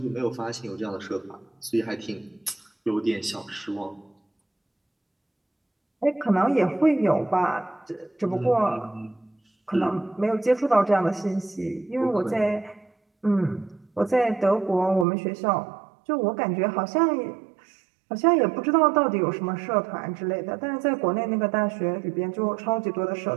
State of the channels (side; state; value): left; drops out; at 15.1 s